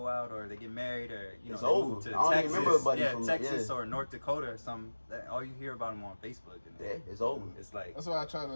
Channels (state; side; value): inverted; both; correlation -1.00